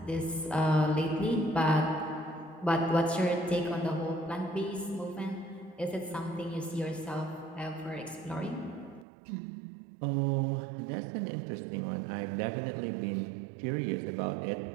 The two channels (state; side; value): drops out; left; at 9.1 s